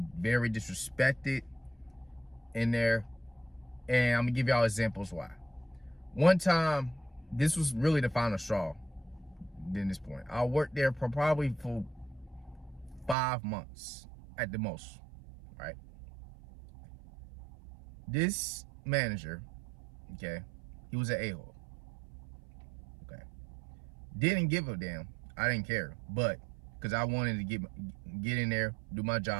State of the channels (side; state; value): left; drops out; at 13.2 s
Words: very disrespected in there. And I'm gonna give y'all examples why. One time, this was really the final straw at this point. I worked there probably for 5 months at the most, right? This manager, okay, he was an a-hole. Okay. Didn't give a damn. I didn't care. But because I wanted to get in there, do my